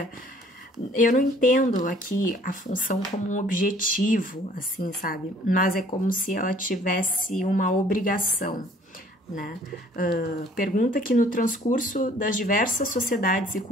Eu não entendo aqui a função como um objetivo, assim, sabe? Mas é como se ela tivesse uma obrigação, né? Pergunta que no transcurso das diversas sociedades e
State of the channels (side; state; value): both; normal; correlation 0.56